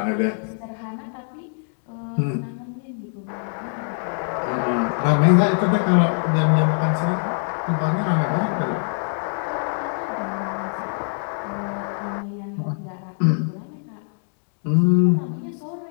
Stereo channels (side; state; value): right; silent; 63 dB below the other